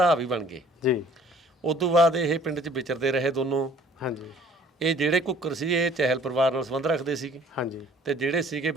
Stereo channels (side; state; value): both; normal; correlation 0.54